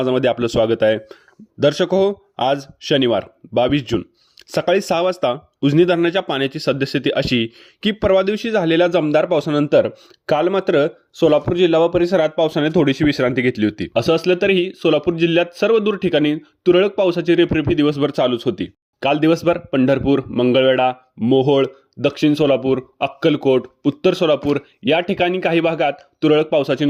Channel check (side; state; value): both; identical; correlation 1.00